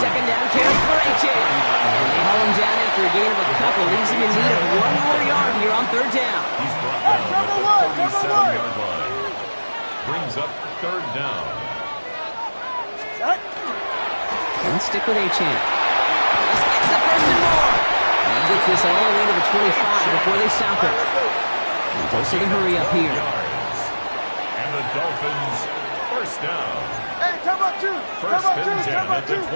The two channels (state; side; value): inverted; both; correlation -1.00